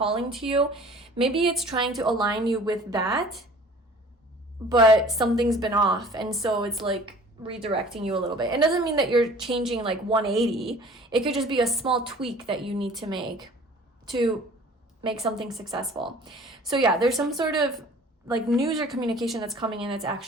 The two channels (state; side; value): normal; both; correlation 0.48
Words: to you. Maybe it's trying to align you with that, but something's been off, and so it's like redirecting you a little bit. It doesn't mean that you're changing like 180. It could just be a small tweak that you need to make something successful. So yeah, there's some sort of like news or communication that's coming in that's